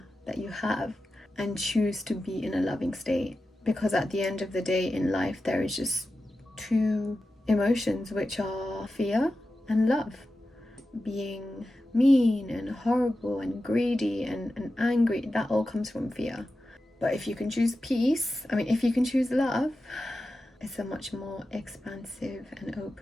that you have and choose to be in a loving state, because at the end of the day in life there is just two emotions, which are fear and love. Being mean and horrible and greedy and angry, that all comes from fear. But if you can choose peace, if you can choose love, it's a much more expansive and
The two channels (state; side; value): normal; both; correlation 0.92